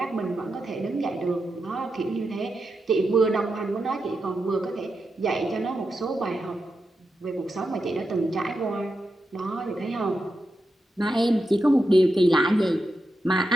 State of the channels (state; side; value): normal; both; correlation 0.87